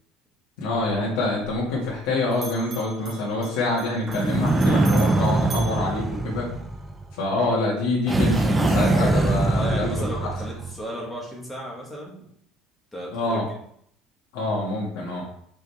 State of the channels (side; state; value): both; normal; correlation 0.66